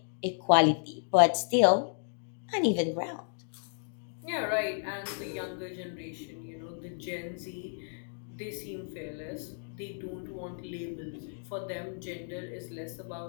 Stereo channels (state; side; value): silent; right; digital silence